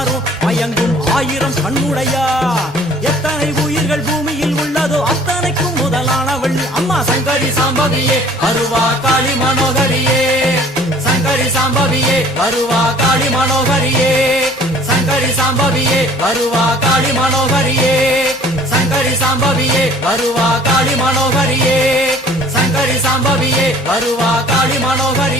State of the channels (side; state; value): both; normal; correlation 0.52